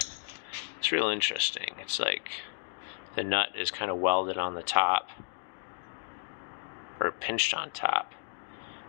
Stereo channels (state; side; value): silent; right; digital silence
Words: It's real interesting. It's like the nut is kind of welded on the top, or pinched on top,